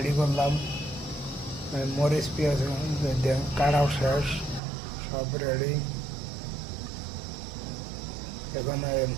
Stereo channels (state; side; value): drops out; left; at 4.6 s